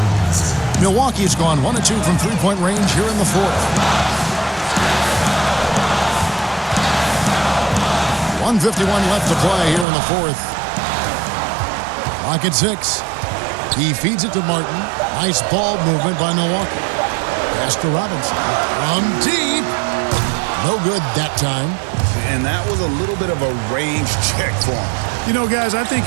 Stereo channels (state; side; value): drops out; left; at 9.9 s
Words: Milwaukee has gone 1 of 2 from three-point range here in the fourth. 1:51 left to play here in the fourth. Clock at 6. He feeds it to Martin. Nice ball movement by Milwaukee. Pass to Robinson. From deep. No good that time. And that was a little bit of a range check for him. You know, guys, I think